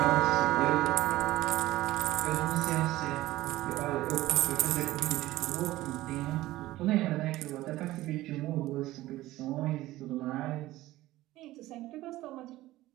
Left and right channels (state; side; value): quieter; left; 16.7 dB